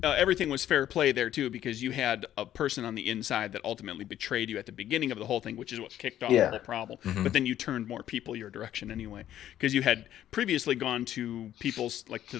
everything was fair play there too, because you had a person on the inside that ultimately betrayed you at the beginning of the whole thing, which is what kicked off the whole problem. Mm-hmm. But then you turned more people your direction anyway, because you had previously gone to people's, like, to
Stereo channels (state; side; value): quieter; right; 11.8 dB